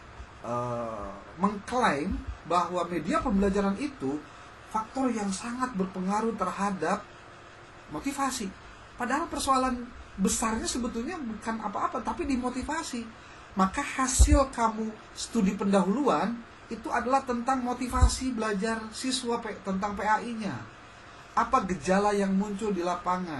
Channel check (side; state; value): both; identical; correlation 1.00